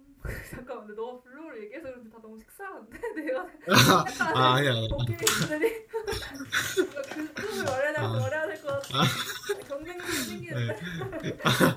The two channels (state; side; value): identical; both; correlation 1.00